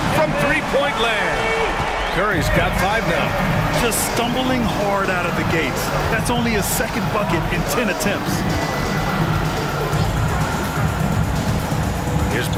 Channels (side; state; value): both; identical; correlation 1.00